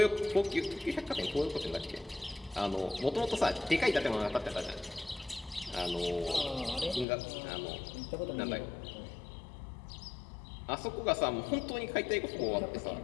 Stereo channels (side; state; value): right; drops out; at 7.1 s